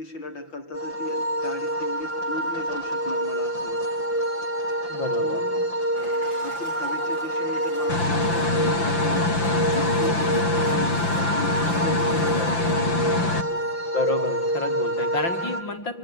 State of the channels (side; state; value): right; late; 5.8 ms